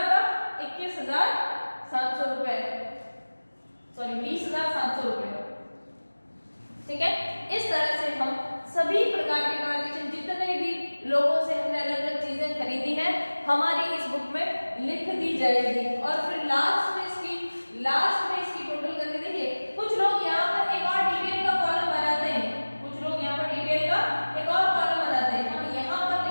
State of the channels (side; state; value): both; inverted; correlation -1.00